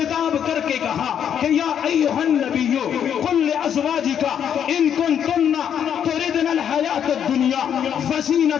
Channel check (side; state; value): right; quieter; 8.8 dB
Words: کر کے کہا کہ یا ایھا النبی قل لازواجک ان کنتن تردن الحیاۃ الدنیا